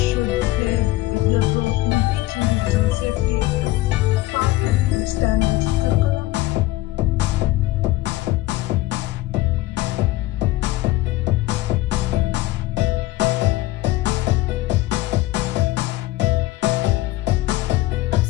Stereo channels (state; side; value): quieter; right; 17.2 dB